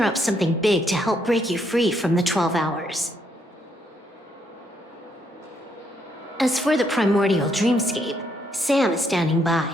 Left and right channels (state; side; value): normal; both; correlation 0.73